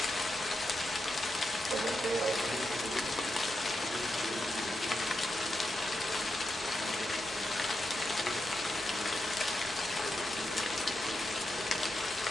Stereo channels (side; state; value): both; normal; correlation 0.86